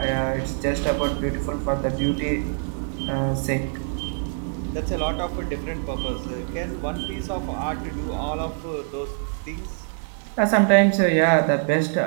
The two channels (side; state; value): left; silent; digital silence